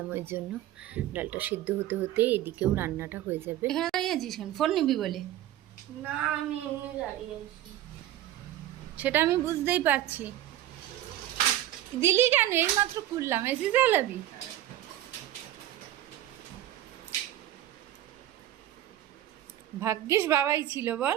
ওই জন্য ডালটা সিদ্ধ হতে হতে এদিকেও রান্নাটা হয়ে যাবে। এখানে দাঁড়িয়ে আছিস কেন, ফোন নিবি বলে? না আমি এমনি দাঁড়িয়ে আছি। সেটা আমি বুঝতেই পারছি, দিলি কেন, এই মাত্র খুললাম, এসে চালাবি, ভাগ্যিস বাবাই ছিল বল,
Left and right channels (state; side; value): quieter; left; 13.2 dB